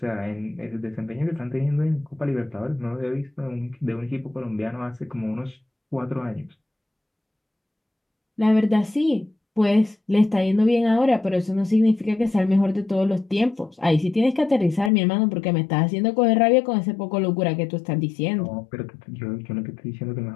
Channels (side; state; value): right; drops out; at 14.9 s